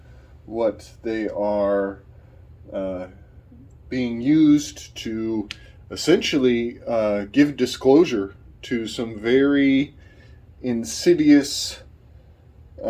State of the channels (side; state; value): both; identical; correlation 1.00